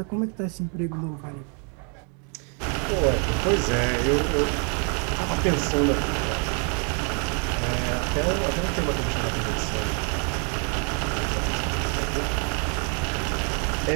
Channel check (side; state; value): left; quieter; 38.7 dB